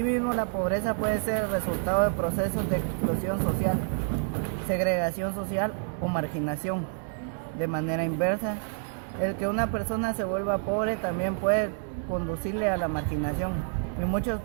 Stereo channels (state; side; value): silent; left; digital silence